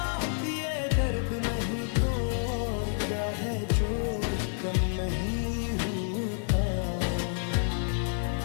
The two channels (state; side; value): silent; right; digital silence